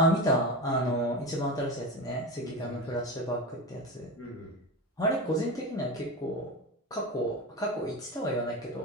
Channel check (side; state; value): both; normal; correlation 0.22